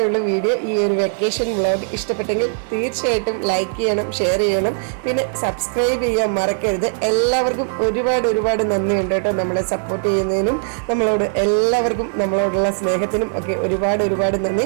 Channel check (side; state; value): left; silent; digital silence